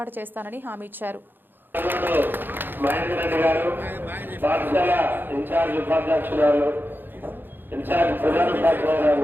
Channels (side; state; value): left; late; 0.096 ms